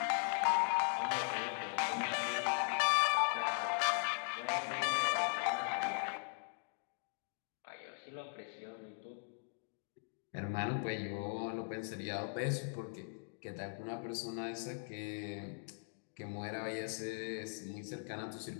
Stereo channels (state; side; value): silent; right; digital silence